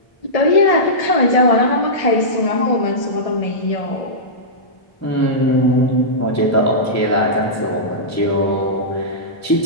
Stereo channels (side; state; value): right; late; 1.6 ms